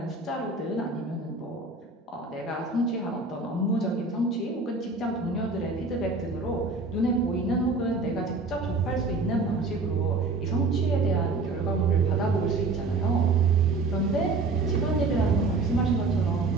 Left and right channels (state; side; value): quieter; left; 3.5 dB